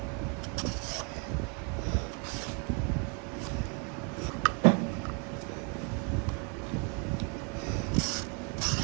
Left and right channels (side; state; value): left; quieter; 34.4 dB